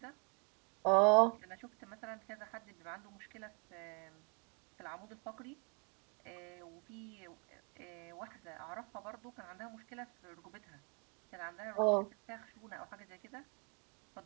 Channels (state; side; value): quieter; left; 35.7 dB